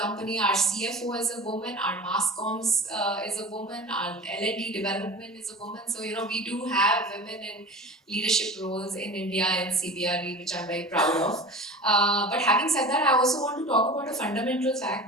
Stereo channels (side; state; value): both; normal; correlation 0.36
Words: our CFO is a woman, our mass comms is a woman, our L&D development is a woman. So, we do have women in leadership roles in India and CBRE, which I'm very proud of. But having said that, I also want to talk about a fundamental fact